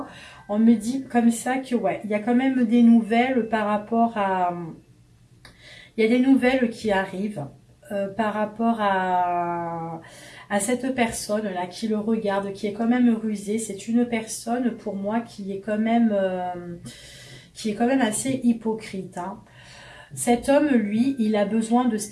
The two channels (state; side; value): identical; both; correlation 1.00